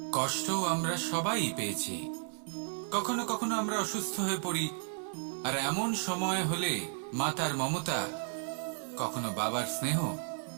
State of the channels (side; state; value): left; silent; 55 dB below the other